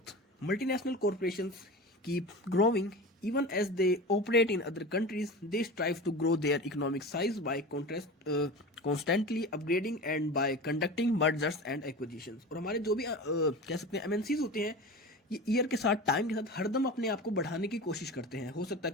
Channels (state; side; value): normal; both; correlation 0.31